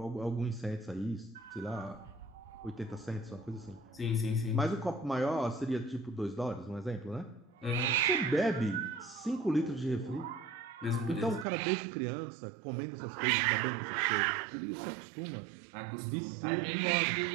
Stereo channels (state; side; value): drops out; left; at 11.5 s